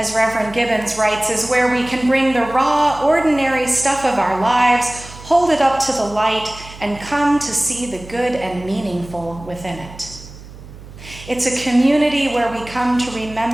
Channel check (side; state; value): right; noise; hum, 17 dB below the sound